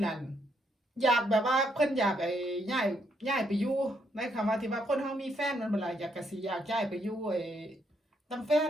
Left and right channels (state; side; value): normal; both; correlation 0.75